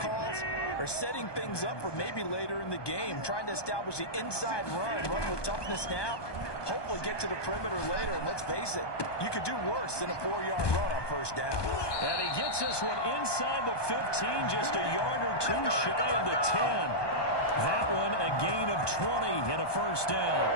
are setting things up for maybe later in the game, trying to establish the inside run with toughness now, hopefully get to the perimeter later. And let's face it, you could do worse than a 4-yard run on 1st down. And he gets this one inside the 15, just a yard or two shy of the 10. That one a gain of 20 and a 1st down.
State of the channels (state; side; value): late; right; 1.2 ms